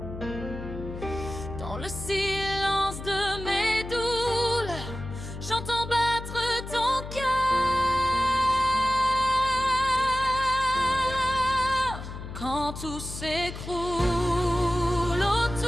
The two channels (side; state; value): left; noise; hum, 10 dB below the sound